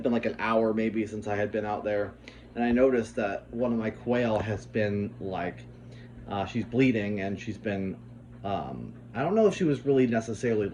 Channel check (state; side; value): identical; both; correlation 1.00